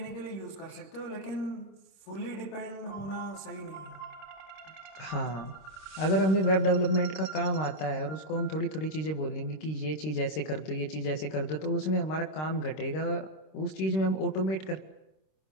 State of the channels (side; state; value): right; late; 26 ms